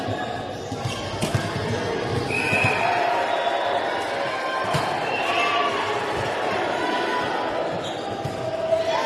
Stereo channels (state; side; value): identical; both; correlation 1.00